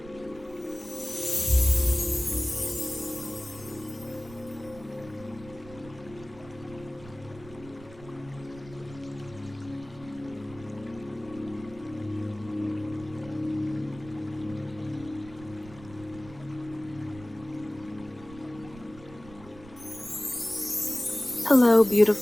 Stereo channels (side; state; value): right; noise; rumble, 19 dB below the sound